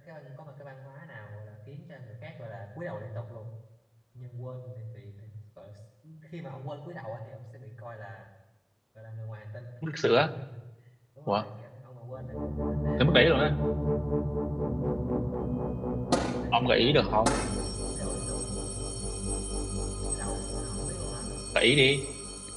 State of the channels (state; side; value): identical; both; correlation 1.00